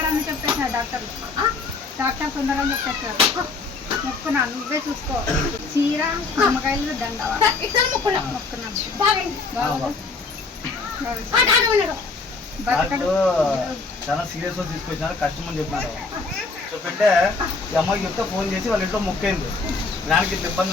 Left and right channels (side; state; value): right; quieter; 4.1 dB